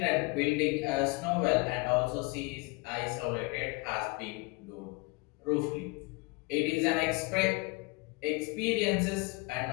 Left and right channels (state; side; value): quieter; right; 27.2 dB